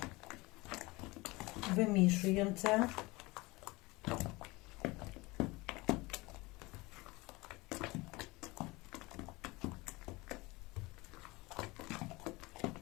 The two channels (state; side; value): quieter; right; 22.9 dB